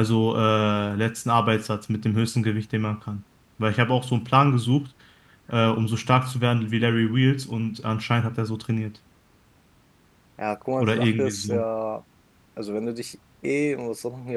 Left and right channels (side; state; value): both; identical; correlation 1.00